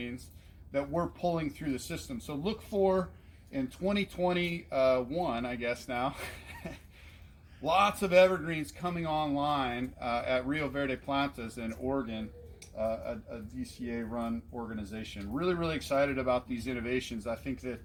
that we're pulling through the system. So look for, in 2021, I guess now, lots of evergreens coming online at Rio Verde Plantas in Oregon, a DCA-run organization. Really, really excited about these innovations. I think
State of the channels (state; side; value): identical; both; correlation 1.00